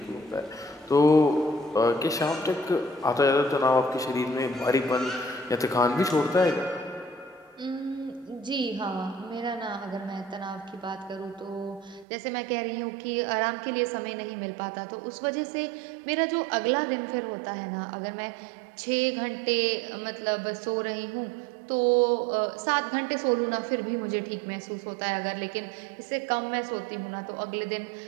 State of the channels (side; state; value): left; drops out; at 12.1 s